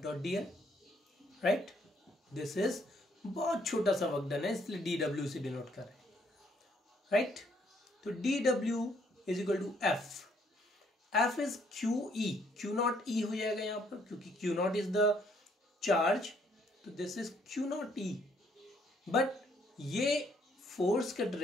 dot dl, right. This is बहुत छोटा सा वर्कडन है इसलिए dw से डिनोट कर रहे हैं, राइट. तो dw is equal to F is QE, Q naught E हो जाएगा यहाँ पर क्योंकि Q naught is the charge. तो this is Q naught E. But ये फोर्स का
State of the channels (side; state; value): both; normal; correlation 0.68